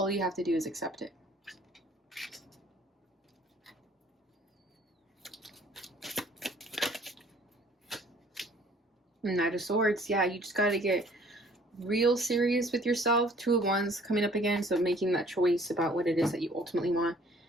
you have to do is accept it. Knight of Swords, yeah, you just got to get real serious with yourself. Two of Wands coming up again, so making that choice about what it is that you ultimately want.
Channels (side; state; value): both; normal; correlation 0.56